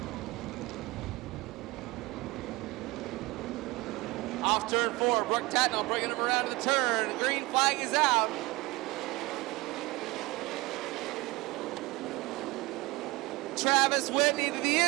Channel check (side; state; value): left; quieter; 22.5 dB